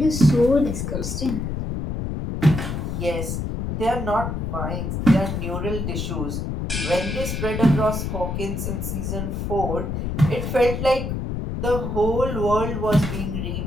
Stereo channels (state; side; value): noise; left; rumble, 3 dB below the sound